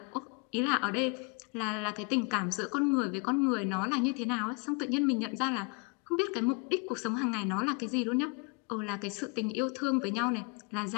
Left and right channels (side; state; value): right; quieter; 33.2 dB